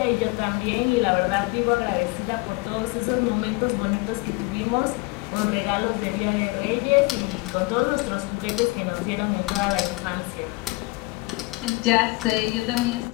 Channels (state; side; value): quieter; right; 24.1 dB